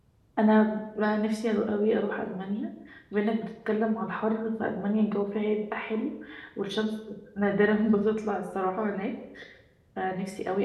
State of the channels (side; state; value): both; identical; correlation 1.00